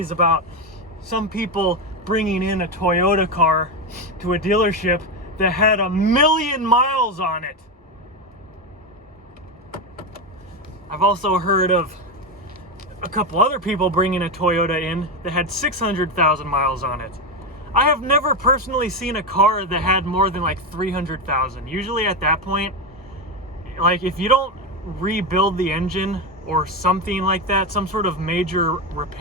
about some people bringing in a Toyota car to a dealership that had 1,000,000 miles on it. I've also heard of a couple other people bringing a Toyota in that had 600,000 miles on it. I have never personally seen a car that had more than like 300,000. Usually at that point, like if you don't rebuild the engine or something like that, some sort of major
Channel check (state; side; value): normal; both; correlation 0.13